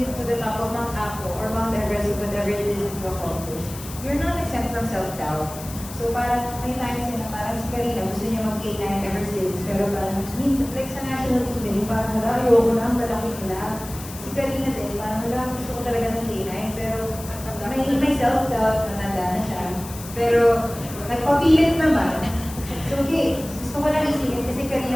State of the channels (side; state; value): left; noise; hiss, 14 dB below the sound